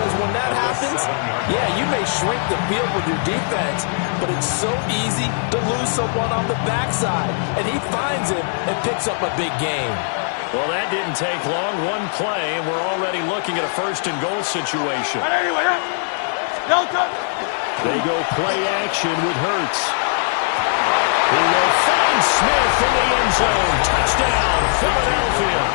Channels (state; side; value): silent; right; 61 dB below the other